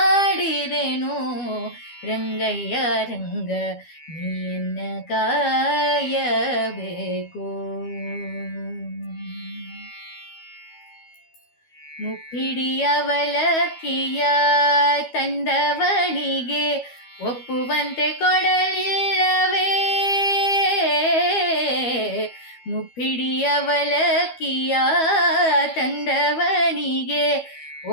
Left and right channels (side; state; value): right; late; 12 ms